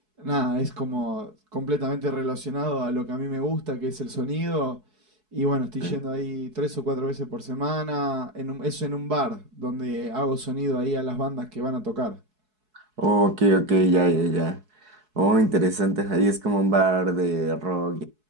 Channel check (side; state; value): left; late; 4.7 ms